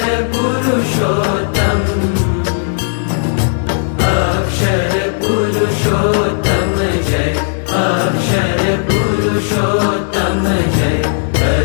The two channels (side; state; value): right; silent; digital silence